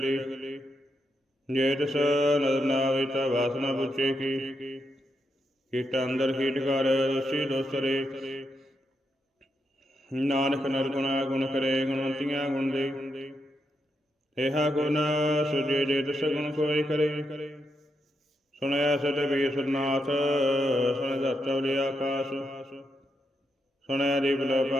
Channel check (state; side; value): normal; both; correlation 0.83